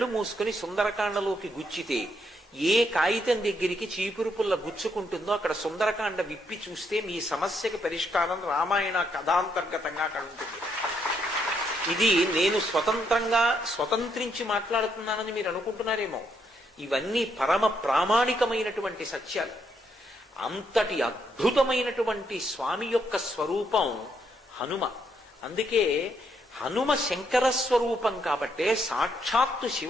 మూసుకుని సుందరకాండలోకి గుచ్చితే ఏ కాగితం దగ్గరికి చీపురు పుల్ల గుచ్చుకుంటుందో అక్కడ సుందరకాండ విప్పి చూస్తే మీ సమస్యకి పరిష్కారం రామాయణ కథాంతర్గతంగా అక్కడ ఉంటుంది. ఇది నేను స్వతంత్రించి మాట్లాడుతున్నానని మీరు అనుకుంటున్నారేమో. ఇవన్నీ పరమ ప్రామాణికమైనటువంటి సత్యాలు. అంతటి అద్భుతమైనటువంటి స్వామి యొక్క స్వరూపం హనుమ. అందుకే హనుమ శంకర స్వరూపం కాబట్టే, సాక్షాత్తు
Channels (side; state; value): both; normal; correlation 0.75